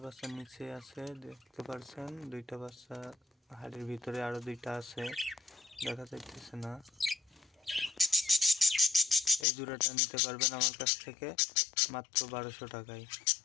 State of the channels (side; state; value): right; drops out; at 9.5 s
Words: বাচ্চা নিচে আছে দেখতে পাচ্ছেন, 2টা বাচ্চা হাড়ির ভিতরে, আরো 2টা আছে দেখা যাইতেছে না। এই জোড়াটা নিতে পারবেন আমার কাছ থেকে মাত্র 1200 টাকায়।